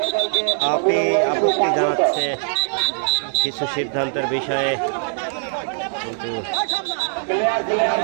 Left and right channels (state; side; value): silent; left; 61 dB below the other